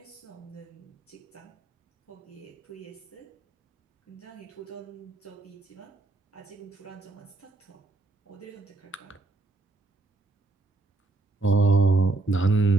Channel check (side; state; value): left; quieter; 3.2 dB